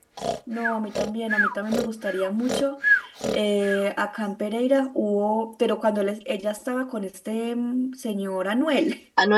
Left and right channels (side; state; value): both; identical; correlation 1.00